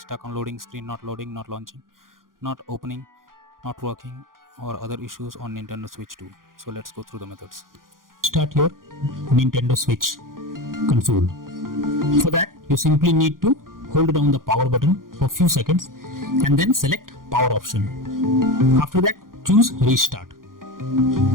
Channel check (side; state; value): left; late; 0.90 ms